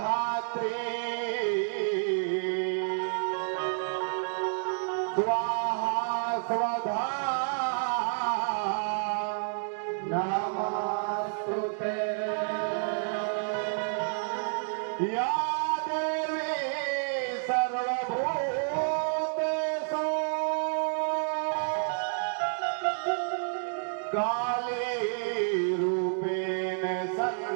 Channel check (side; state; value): left; silent; digital silence